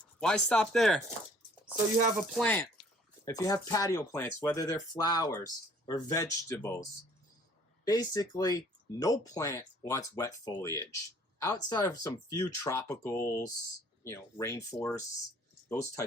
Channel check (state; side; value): normal; both; correlation 0.56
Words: Why stop there? So you have a plant. If you have patio plants, whether they're flowers or vegetables, basically no plant wants wet foliage. Outside of some few tropicals, rainforests, those